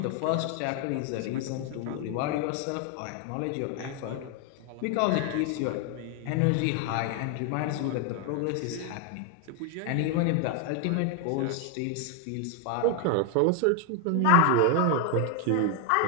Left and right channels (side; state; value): both; different; correlation 0.01